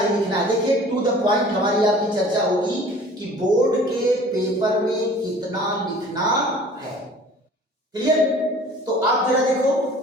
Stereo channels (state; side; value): normal; both; correlation 0.47